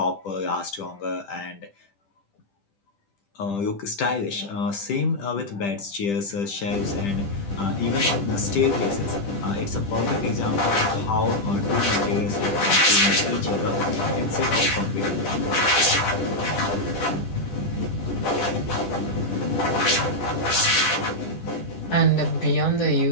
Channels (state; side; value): late; right; 10 ms